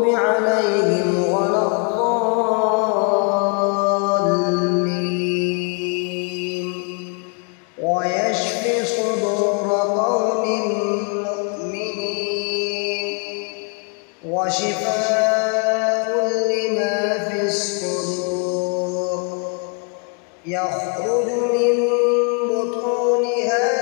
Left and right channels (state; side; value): quieter; right; 35.5 dB